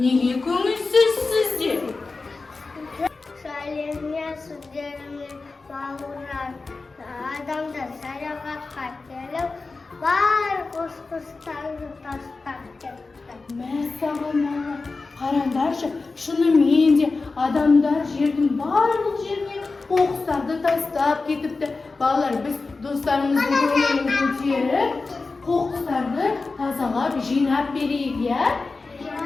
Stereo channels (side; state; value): right; quieter; 3.9 dB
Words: Nega ko'ngilsiz sizlar? Salimga sizlarga bog'lar. Adamda sayohatga kelib, bar qo'shqislarni tashlab ketdi. Masalan, qarandashi, shuni mende odamlar yerning barliq yerine qo'qqislarni tashlab ketibdi. Bolalar, biz do'stlarimizning ko'nglini ko'tarib, qo'qqislarni tozalab, jinab beraylik ya.